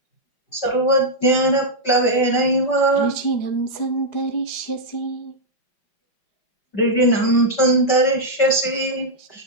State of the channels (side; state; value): right; late; 5.2 ms